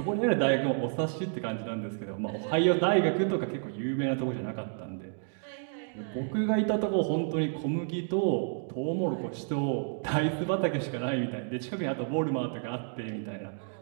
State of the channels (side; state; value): left; silent; 58 dB below the other